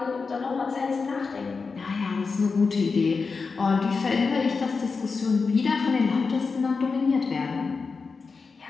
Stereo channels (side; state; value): right; quieter; 4.7 dB